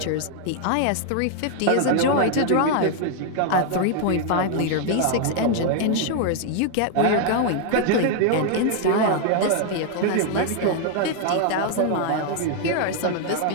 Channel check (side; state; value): both; different; correlation 0.00